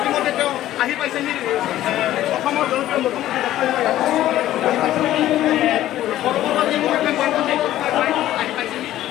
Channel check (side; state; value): right; quieter; 13.6 dB